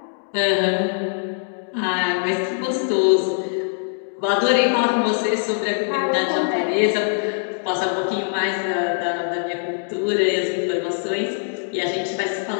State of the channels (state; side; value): silent; right; digital silence